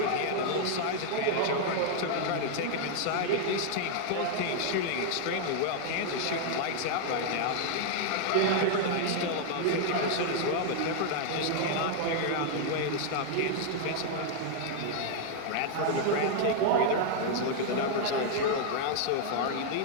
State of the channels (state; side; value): different; both; correlation 0.00